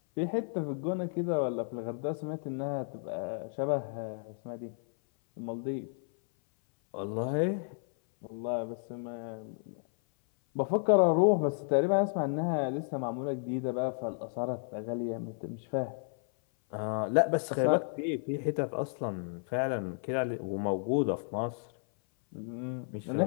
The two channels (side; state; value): right; silent; 56 dB below the other